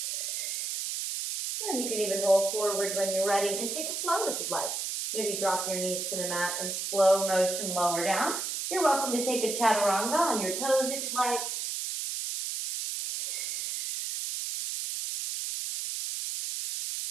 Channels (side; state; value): right; noise; hiss, 3 dB below the sound